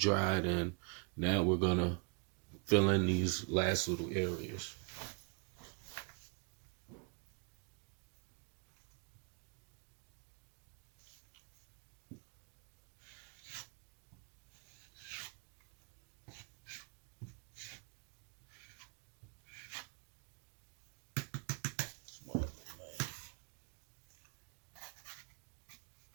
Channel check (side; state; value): left; quieter; 32.7 dB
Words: and now we're gonna fill in these last little areas.